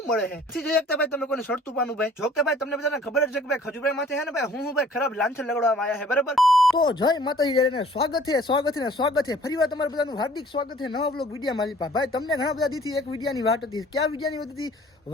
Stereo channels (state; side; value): normal; both; correlation 0.54